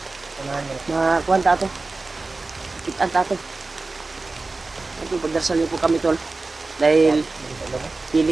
Makuhan ta ito. Kitaan ta ito. Ito, pagdarasal niyo po kami tol. Dahil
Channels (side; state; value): left; quieter; 3.5 dB